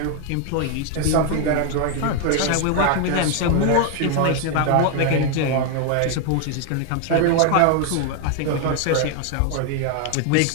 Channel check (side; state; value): both; different; correlation 0.01